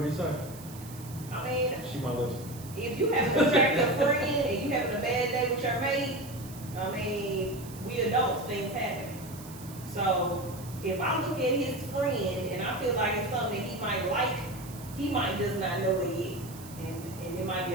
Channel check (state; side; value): noise; right; hiss, 17 dB below the sound